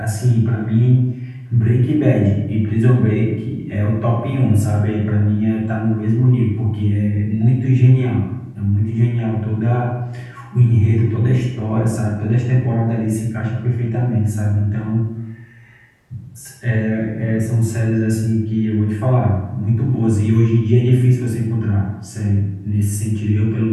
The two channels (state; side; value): identical; both; correlation 1.00